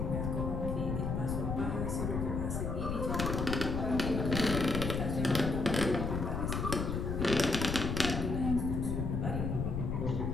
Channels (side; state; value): left; noise; rumble, 1 dB below the sound